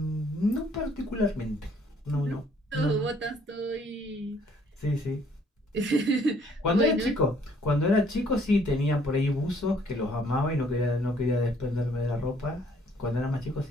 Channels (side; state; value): both; normal; correlation 0.63